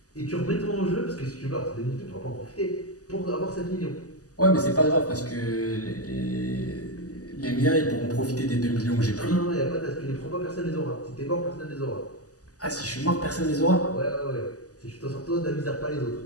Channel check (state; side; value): late; right; 0.67 ms